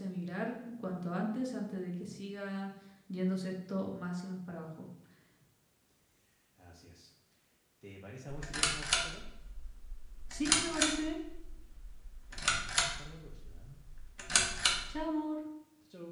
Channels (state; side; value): identical; both; correlation 1.00